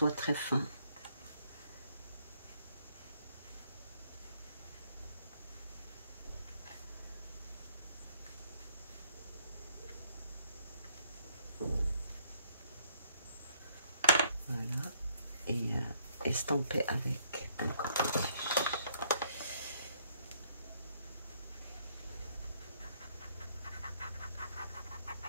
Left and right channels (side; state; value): both; inverted; correlation -0.68